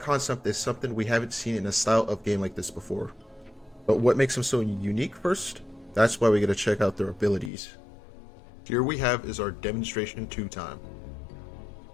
is something we haven't seen in a style of game like this before. But what makes them so unique first? That's why we gotta check out their abilities. Here we have is our demonstration 2-time.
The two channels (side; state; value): right; drops out; at 7.5 s